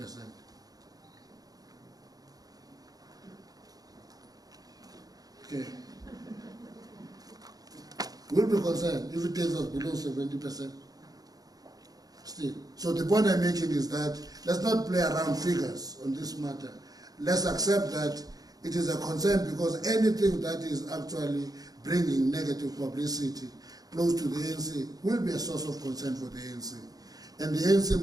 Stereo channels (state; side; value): late; left; 0.18 ms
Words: Okay. We'll be concerned if it takes us below 70%. Still. So the point I'm making is that let's not play around figures on this matter. Let's accept that it is a concern, because anything that is actually bringing negative publicity close to the ANC will be a source of concern for the ANC. And the ANC